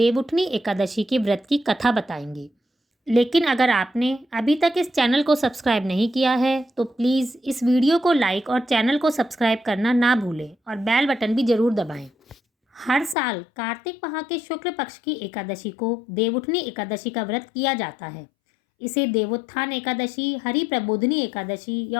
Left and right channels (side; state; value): right; drops out; at 13.2 s